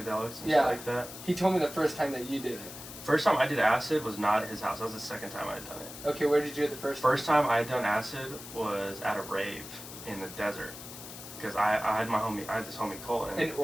and shit like that. He told me the first time that you did it. First time I did acid was not at his house. That was the second time I had done it. Okay, where did you do it the first time? First time I had done acid was at a rave in the desert. Because I had this homie Colton. An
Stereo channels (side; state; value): left; noise; hiss, 13 dB below the sound